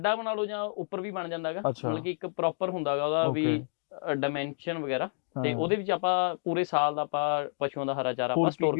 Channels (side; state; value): right; silent; digital silence